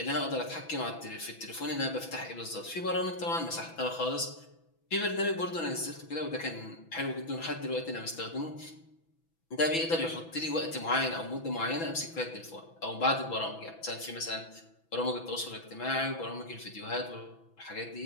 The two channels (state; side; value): late; right; 6.1 ms